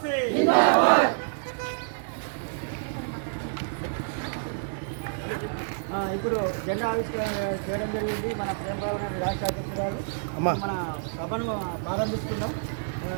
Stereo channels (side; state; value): left; silent; 59 dB below the other